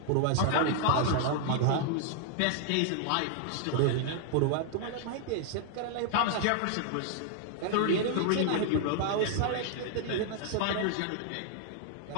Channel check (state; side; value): different; both; correlation 0.00